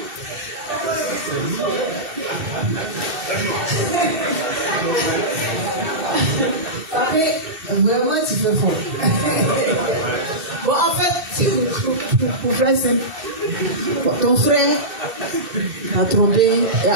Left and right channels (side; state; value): left; late; 2.7 ms